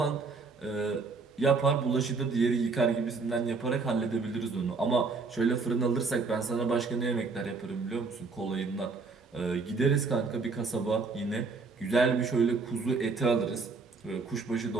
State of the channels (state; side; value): quieter; left; 4.3 dB